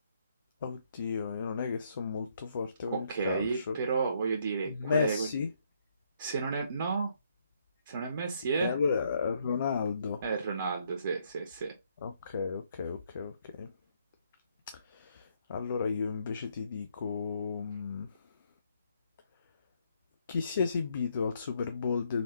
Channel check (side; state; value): both; inverted; correlation -0.71